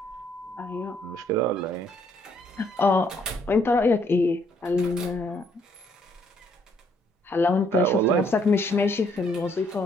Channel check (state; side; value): normal; both; correlation 0.68